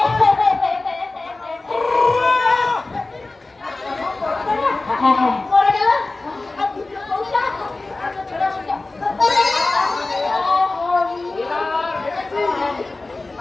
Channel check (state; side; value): quieter; right; 3.3 dB